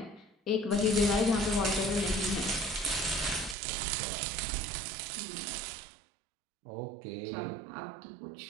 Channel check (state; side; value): drops out; left; at 3.6 s